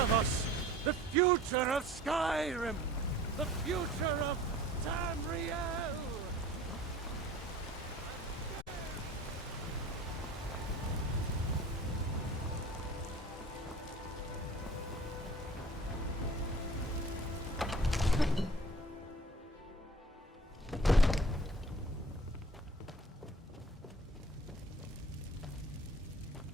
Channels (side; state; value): both; normal; correlation 0.46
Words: us, the future of Skyrim, the future of Tamriel.